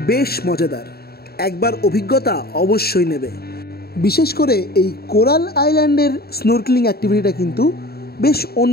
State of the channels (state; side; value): late; right; 0.45 ms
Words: বেশ মজাদার, একবার অভিজ্ঞতা অবশ্যই নেবে। বিশেষ করে এই কোরাল আইল্যান্ডের স্নোরক্লিং অ্যাক্টিভিটিটা কিন্তু বেশ